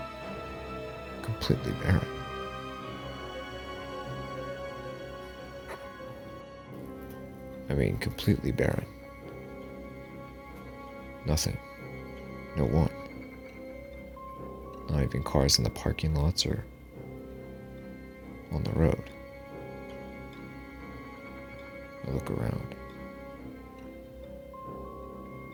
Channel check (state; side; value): identical; both; correlation 1.00